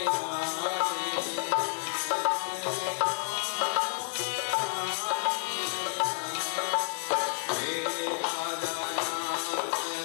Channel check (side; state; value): right; silent; digital silence